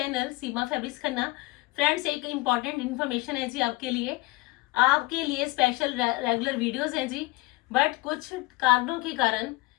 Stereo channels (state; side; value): quieter; right; 21.5 dB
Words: Seema fabrics Khanna. Friends, एक important information है जी आपके लिए स्पेशल रेगुलर वीडियोस हैं जी। बट कुछ कारणों के कारण